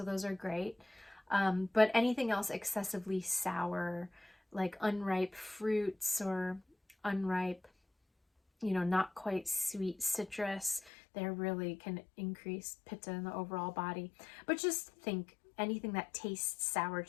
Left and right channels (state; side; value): drops out; right; at 10.9 s